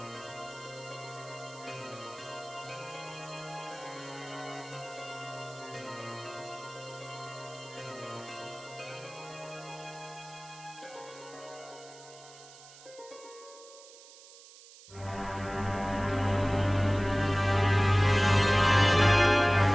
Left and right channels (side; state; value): right; noise; hiss, 20 dB below the sound